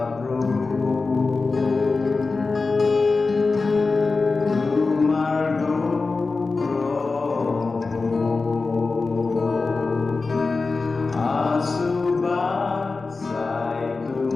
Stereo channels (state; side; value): quieter; right; 4.0 dB